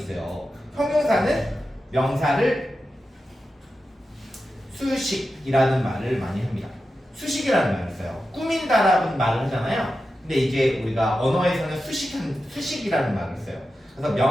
형용사는 명사를 수식이라는 말을 많이 합니다. 수식이라는 말을 써요. 꾸민다라는 말을 하잖아요. 근데 이제 우리가 언어에서는 수식이라는 말을 써요. 그래서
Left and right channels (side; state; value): both; normal; correlation 0.91